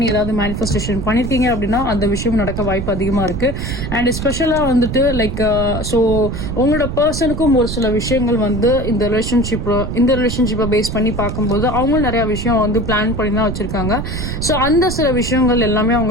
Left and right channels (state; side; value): noise; right; rumble, 4 dB below the sound